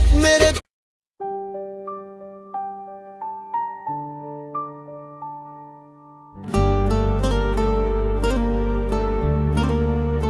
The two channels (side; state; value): both; identical; correlation 1.00